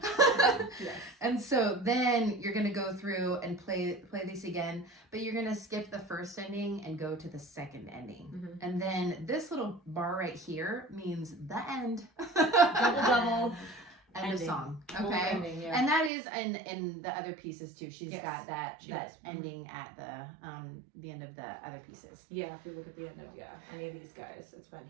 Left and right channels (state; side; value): drops out; left; at 16.1 s